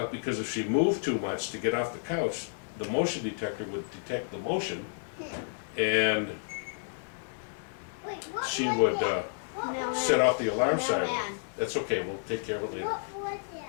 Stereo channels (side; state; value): right; silent; 57 dB below the other